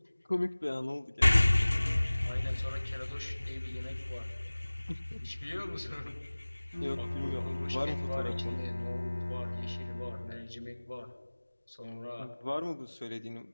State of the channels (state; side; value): inverted; both; correlation -1.00